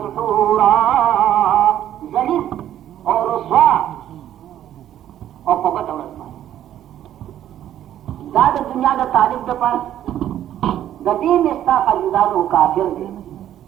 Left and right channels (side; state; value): left; quieter; 11.5 dB